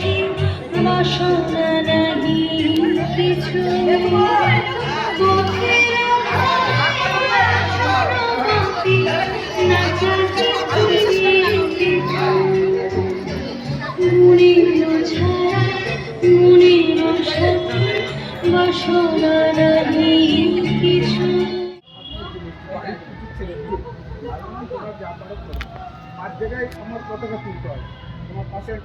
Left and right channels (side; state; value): both; identical; correlation 1.00